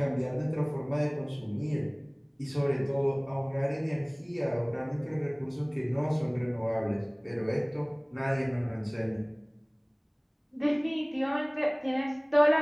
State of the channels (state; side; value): identical; both; correlation 1.00